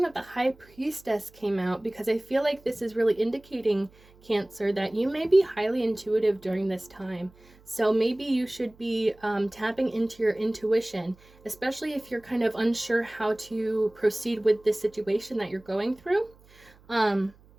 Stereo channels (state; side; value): noise; right; hum, 27 dB below the sound